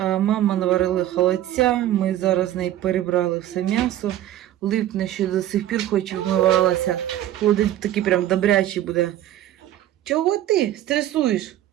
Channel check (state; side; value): quieter; left; 13.0 dB